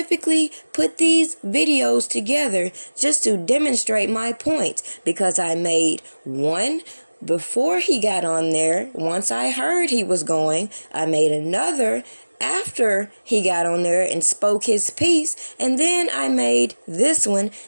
put these videos together just to demonstrate my point, because I made one before he got on there. Once I heard he was going, I made another after he got on there and spoke his piece, and then I made this one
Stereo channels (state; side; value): inverted; both; correlation -1.00